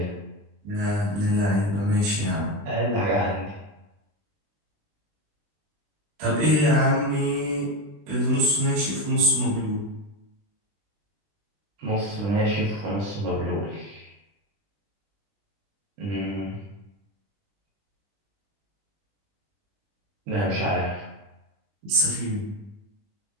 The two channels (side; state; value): left; late; 20 ms